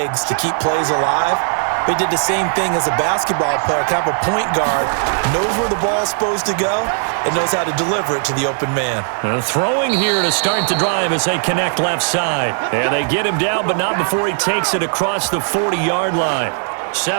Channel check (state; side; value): silent; left; digital silence